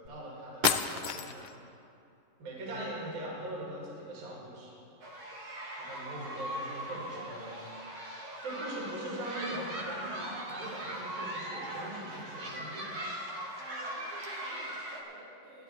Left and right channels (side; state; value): left; late; 11 ms